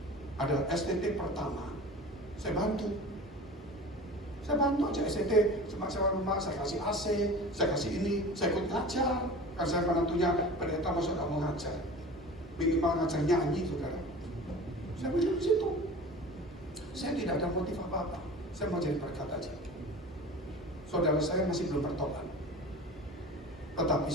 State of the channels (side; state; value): both; normal; correlation 0.37